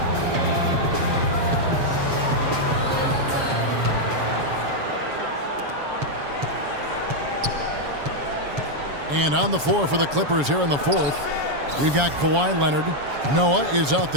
And on the floor for the Clippers here in the fourth, we've got Kawhi Leonard. Noah is out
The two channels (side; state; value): left; late; 7.1 ms